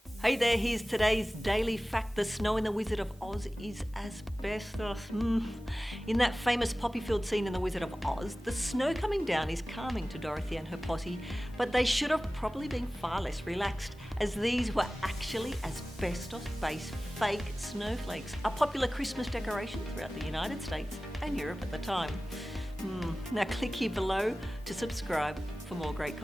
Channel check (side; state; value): both; normal; correlation 0.97